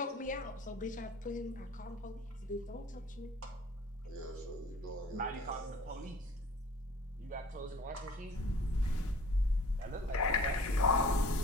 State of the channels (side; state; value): both; normal; correlation 0.48